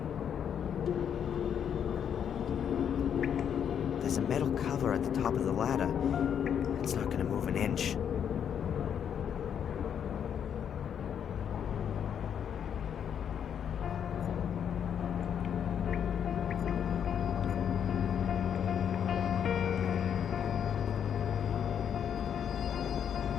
There's a metal cover at the top of the ladder. It's not gonna move an inch.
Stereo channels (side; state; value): right; quieter; 8.4 dB